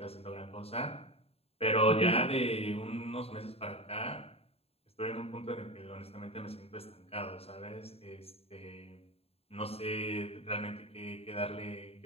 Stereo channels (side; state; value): right; late; 0.29 ms